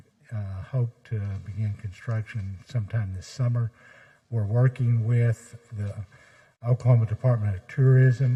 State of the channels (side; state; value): both; identical; correlation 1.00